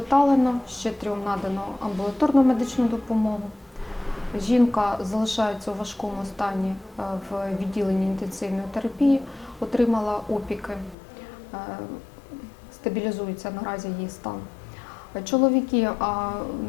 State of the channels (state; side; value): drops out; right; at 11.0 s